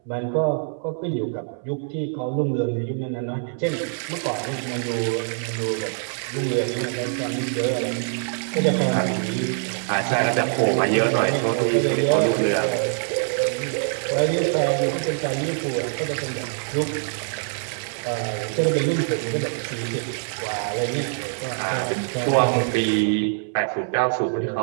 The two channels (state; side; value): silent; left; 63 dB below the other